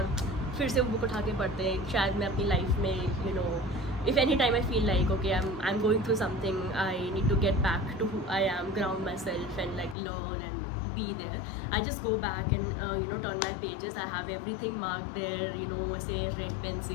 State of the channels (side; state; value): right; drops out; at 10.0 s